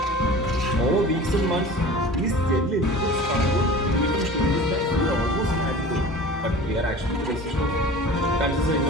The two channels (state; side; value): normal; both; correlation 0.39